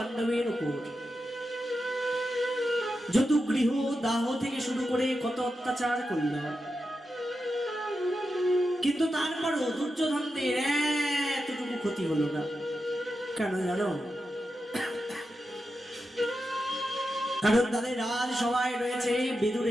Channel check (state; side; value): normal; both; correlation 0.89